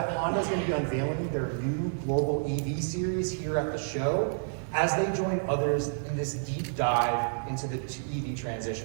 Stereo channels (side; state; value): left; silent; 58 dB below the other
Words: Honda is going to be unveiling their new global EV series here at the show as they join others in this deep dive into the EV